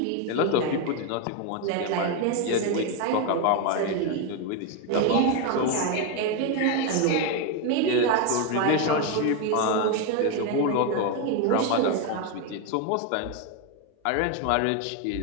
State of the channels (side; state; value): both; different; correlation 0.02